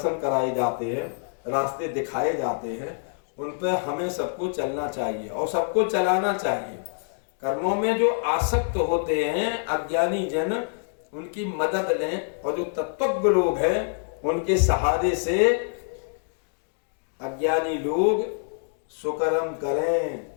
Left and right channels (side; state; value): right; silent; digital silence